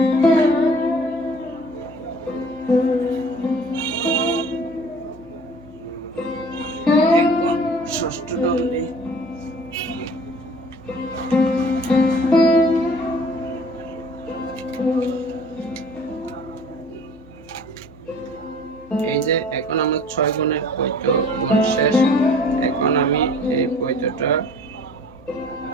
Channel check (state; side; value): noise; left; hum, 25 dB below the sound